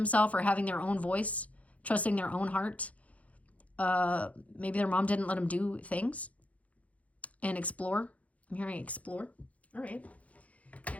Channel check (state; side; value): late; right; 0.067 ms